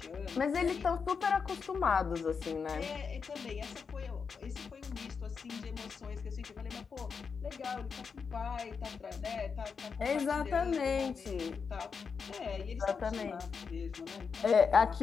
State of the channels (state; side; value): quieter; right; 5.7 dB